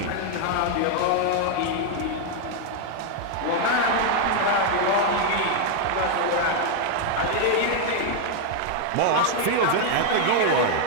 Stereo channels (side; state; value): both; different; correlation 0.00